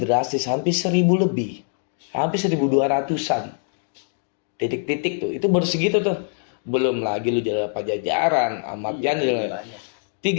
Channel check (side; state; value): right; silent; digital silence